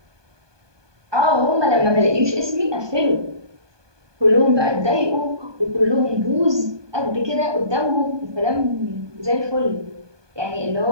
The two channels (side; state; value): left; late; 1.2 ms